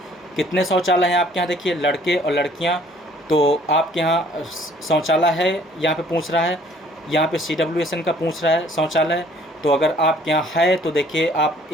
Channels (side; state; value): both; normal; correlation 0.58